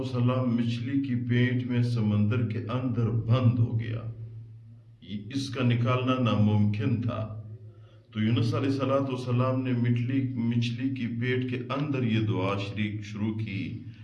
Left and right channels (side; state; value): both; identical; correlation 1.00